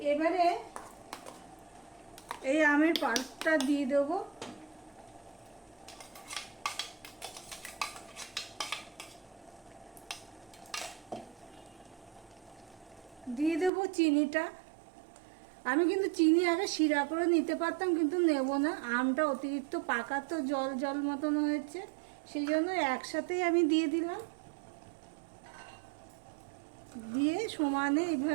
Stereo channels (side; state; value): left; drops out; at 13.7 s